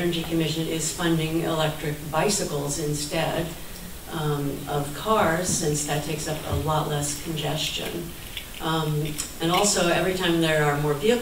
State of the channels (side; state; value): both; identical; correlation 1.00